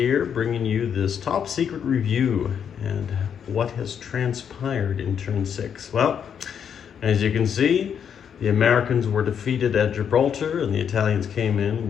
bringing you this top secret review and what has transpired in turn 6. Well, as you can see, the Americans were defeated at Gibraltar and the Italians came in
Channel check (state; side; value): quieter; right; 7.9 dB